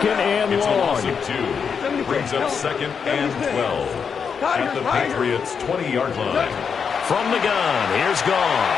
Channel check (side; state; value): right; quieter; 6.4 dB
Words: and It's a long. loss of 2. Brings up 2nd and 12 at the Patriots' 20-yard line. From the gun, here's